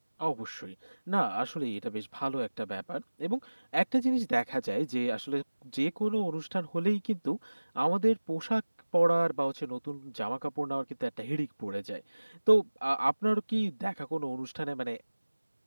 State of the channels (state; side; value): inverted; both; correlation -1.00